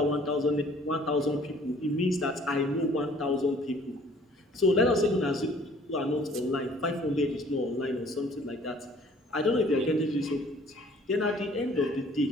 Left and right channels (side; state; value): both; normal; correlation 0.55